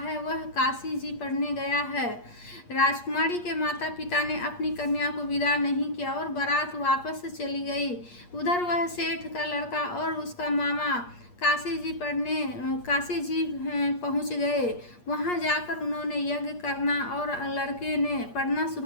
वह काशी जी पढ़ने गया है। राजकुमारी के माता पिता ने अपनी कन्या को विदा नहीं किया और बारात वापस चली गई। उधर वह सेठ का लड़का और उसका मामा काशी जी पहुंच गए। वहां जाकर उन्होंने यज्ञ करना और लड़के ने पढ़ना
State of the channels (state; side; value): late; right; 8.5 ms